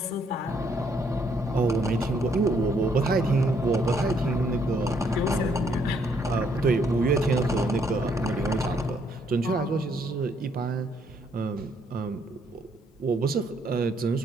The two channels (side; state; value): both; normal; correlation 0.70